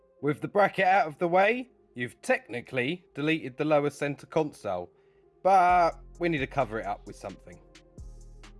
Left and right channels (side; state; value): both; identical; correlation 1.00